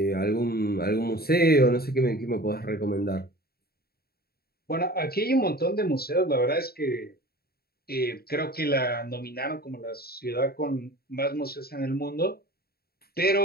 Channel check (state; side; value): late; right; 0.45 ms